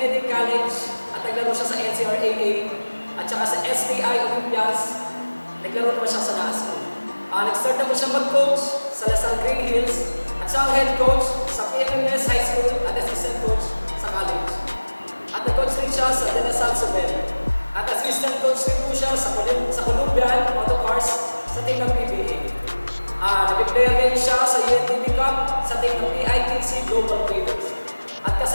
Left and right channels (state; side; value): inverted; both; correlation -1.00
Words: College at naglaro siya sa NCRAA at saka sa STI Olympias. Naglaro naman siya sa NASCO. Nag-start naman siya mag-coach sa Lasal Green Hills at siya ang head coach sa PMMS High School at assistant coach sa college. At nag-coach rin siya sa De La Salle Subel. At assistant coach rin po siya sa Columbian Autocars sa team ng PBA. Nag-player rin siya sa UNTV Cup sa team ng PITC Global Traders. At